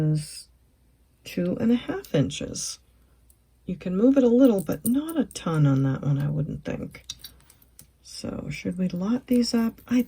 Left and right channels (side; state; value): both; identical; correlation 1.00